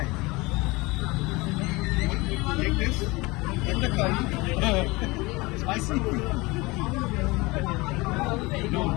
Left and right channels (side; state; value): right; quieter; 23.4 dB